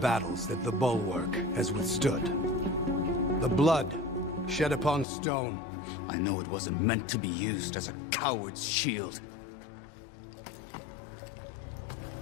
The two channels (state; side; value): drops out; right; at 5.1 s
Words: that the Bulwark has withstood? The blood shed upon stone. I know it wasn't meant to be used as a coward's shield.